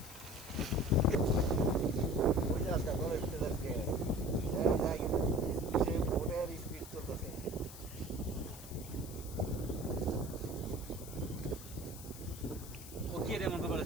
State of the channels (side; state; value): left; noise; hiss, 14 dB below the sound